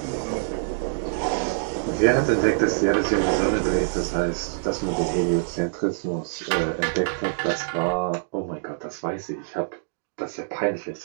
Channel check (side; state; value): left; silent; digital silence